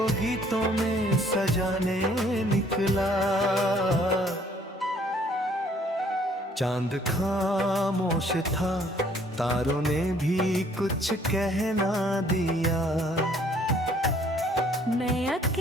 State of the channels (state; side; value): normal; both; correlation 0.61